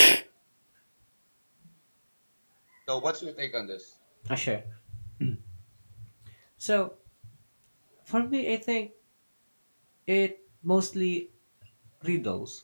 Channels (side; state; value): both; inverted; correlation -1.00